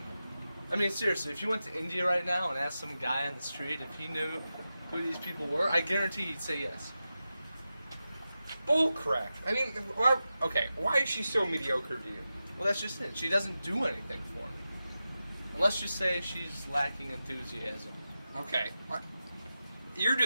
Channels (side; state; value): both; inverted; correlation -0.92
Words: I mean, seriously, if you went to India right now and asked some guy on the street if he knew who these people were, I guarantee he'd say yes. Bullcrap. I mean, why is she so mediocre to you? Well, that's just it. She doesn't do anything for me. And let's just say she's lacking enthusiasm. Okay. You're